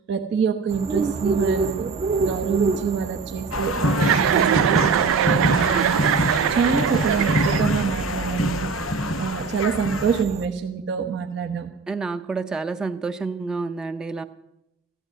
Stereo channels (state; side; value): quieter; left; 4.5 dB